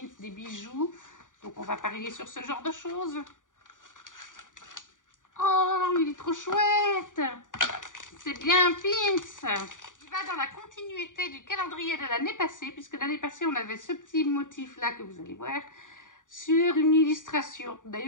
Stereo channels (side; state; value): right; late; 0.88 ms